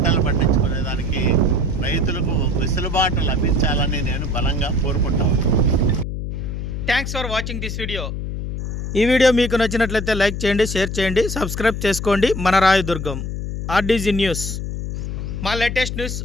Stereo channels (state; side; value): noise; left; hum, 4 dB below the sound